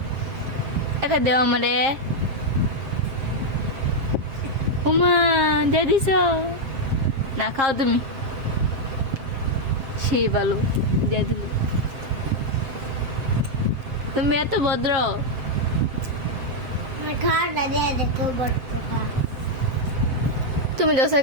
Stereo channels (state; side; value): late; left; 7.6 ms